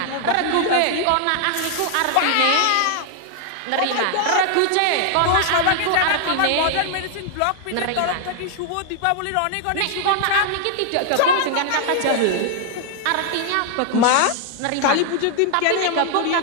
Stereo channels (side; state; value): both; different; correlation 0.00